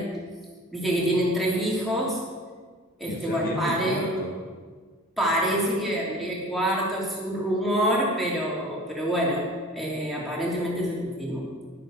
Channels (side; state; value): both; normal; correlation 0.43